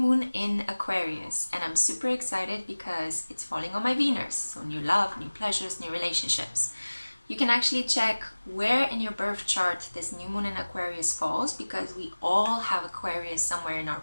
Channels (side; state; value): both; inverted; correlation -1.00